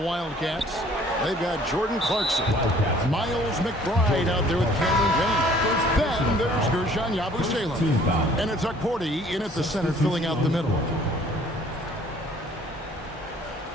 Wildcats, they've got Jordan Clarkson. Miles McBride out there with Cameron Payne. Then there's Gershon Yabusele. And it's Akporti in at the center, filling out the middle.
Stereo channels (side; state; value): both; normal; correlation 0.56